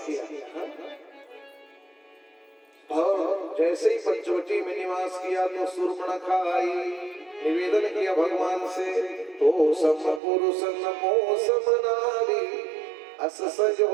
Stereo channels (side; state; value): left; drops out; at 10.2 s